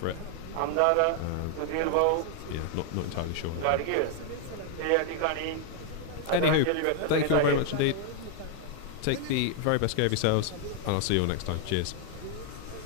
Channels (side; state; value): both; different; correlation 0.00